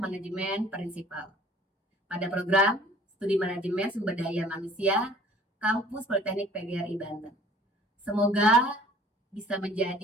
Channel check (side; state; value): both; normal; correlation 0.51